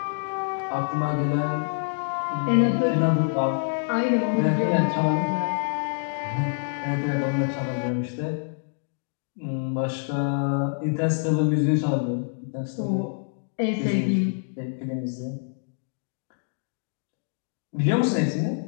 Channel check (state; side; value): silent; right; digital silence